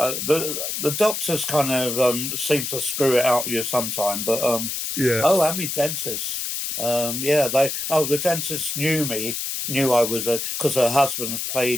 doctors kind of seem to screw it out with you sometime, but Yeah. oh, and me dentist. The dentist knew I was because her husband's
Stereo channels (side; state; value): left; noise; hiss, 3 dB below the sound